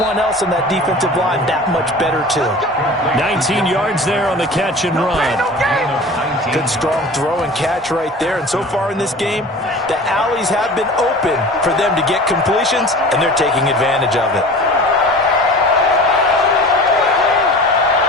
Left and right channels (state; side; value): normal; both; correlation 0.39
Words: else in that defensive line that much better too. 19 yards there on the catch and run. Good strong throw and catch right there, and so far in this game, the alleys have been open for them to get completions, and they're taking advantage of it.